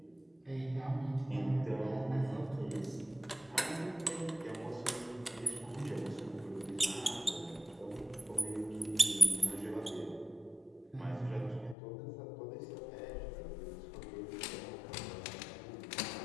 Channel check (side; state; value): right; drops out; at 11.8 s